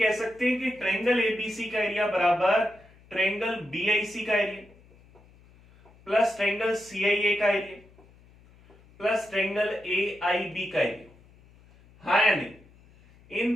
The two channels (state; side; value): noise; left; hum, 27 dB below the sound